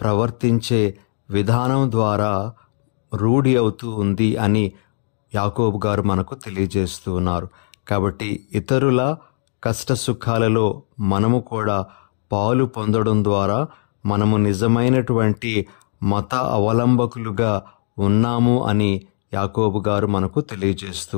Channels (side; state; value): right; silent; digital silence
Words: విధానం ద్వారా రూఢి అవుతూ ఉంది అని యాకోబు గారు మనకు తెలియజేస్తూ ఉన్నారు. కాబట్టి ఇతరుల కష్ట సుఖాలలో మనము కూడా పాలు పొందడం ద్వారా మనము నిజమైనటువంటి మత అవలంబకులుగా ఉన్నాము అని యాకోబు గారు మనకు తెలియజేస్తూ